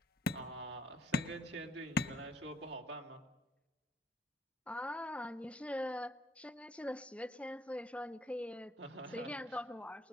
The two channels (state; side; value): normal; both; correlation 0.66